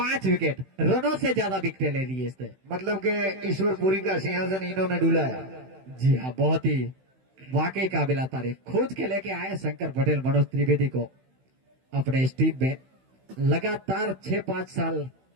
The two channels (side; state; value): left; late; 16 ms